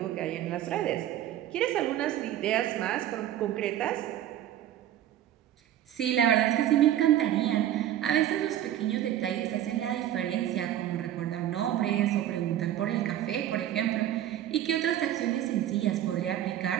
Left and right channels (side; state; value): left; quieter; 11.9 dB